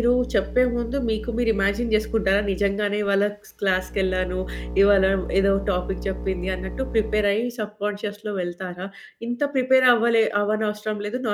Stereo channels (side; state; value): both; identical; correlation 1.00